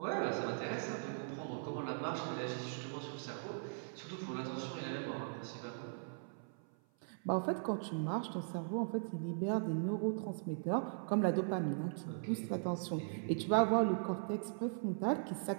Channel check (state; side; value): silent; left; 51 dB below the other